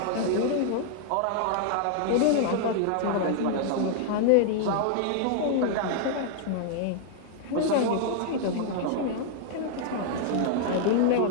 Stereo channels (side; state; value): both; different; correlation 0.00